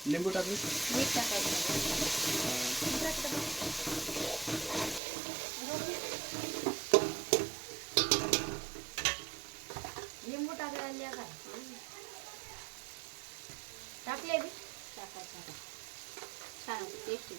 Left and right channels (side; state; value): left; drops out; at 5.0 s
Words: लिंबू टाकली. मीठ टाकायचं. लिंबू टाकायला काय टाकले बी टाकायचं. छान होते, टेस्ट